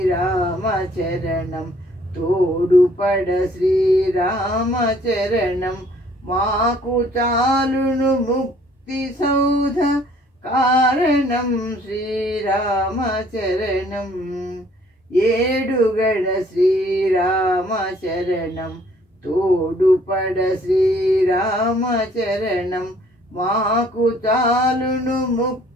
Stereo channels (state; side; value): normal; both; correlation 0.59